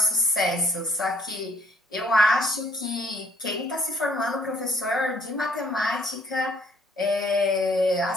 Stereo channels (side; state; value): both; normal; correlation 0.62